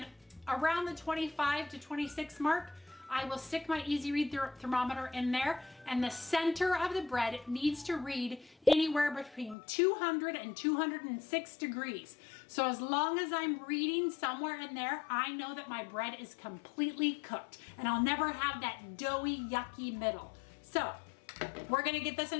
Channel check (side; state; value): right; drops out; at 9.6 s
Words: around the 25 to 26 mark, I will stick my Easy Read thermometer in there, and the center of the bread needs to read anywhere between 200 and 206 degrees. So as long as I'm reading somewhere in there, I know that my bread is completely cooked, and I'll never have that doughy, yucky middle. So We're gonna get this